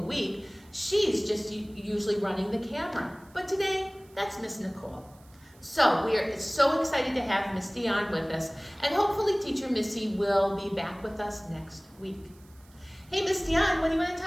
She's just usually running the camera. But today, that's Miss Nicole. So we are so excited to have Miss Dion with us, and hopefully Teacher Missy will be back with us next week. Hey, Miss Dion, what do you want to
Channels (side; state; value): right; noise; hiss, 29 dB below the sound